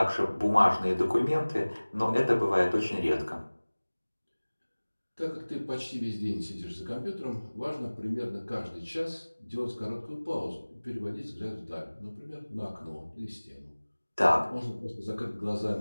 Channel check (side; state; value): both; inverted; correlation -1.00